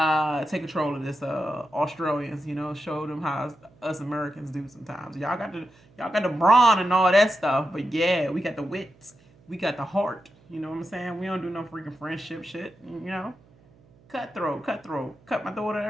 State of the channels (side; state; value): right; noise; hum, 29 dB below the sound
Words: take control of this Australians. Show them how us Americans do sometimes. Y'all got the brawn and all that stuff, but yeah, we got the wits. We got the heart, you know what I'm saying? We don't do no freaking friendship shit, Cutthroat, cut my throat and